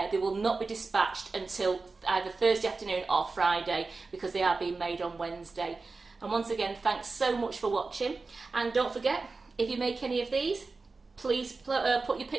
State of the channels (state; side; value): quieter; left; 3.9 dB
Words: they will not be dispatched until either Thursday afternoon or Friday, because they are being made on Wednesday. And once again, thanks so much for watching. And don't forget, if you make any of these, please put your